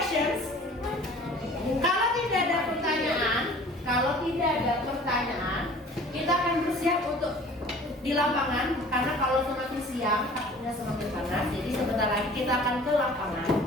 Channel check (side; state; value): both; normal; correlation 0.47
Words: Kalau tidak ada pertanyaan, kita akan bersiap untuk di lapangan. Karena kalau semakin siang, takutnya semakin panas. Jadi sebentar lagi kita akan ke